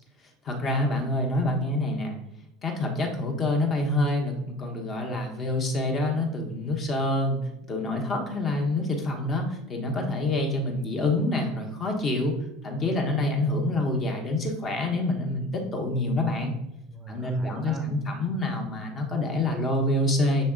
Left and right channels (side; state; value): both; normal; correlation 0.41